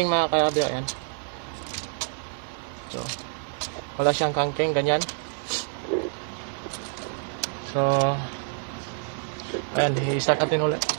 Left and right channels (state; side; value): silent; left; 60 dB below the other